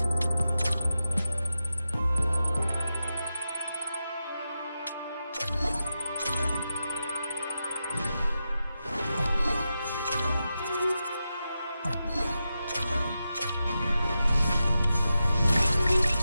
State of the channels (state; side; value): inverted; both; correlation -0.90